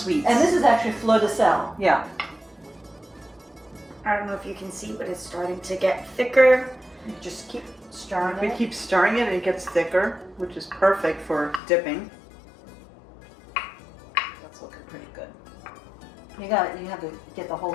And this is actually fleur de sel. Yeah. I don't know if you can see, but it's starting to get thicker. Just keep stirring We it. keep stirring it and it gets thicker, which is perfect for dipping. That's looking pretty good. You have to get the whole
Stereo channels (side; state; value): right; drops out; at 11.6 s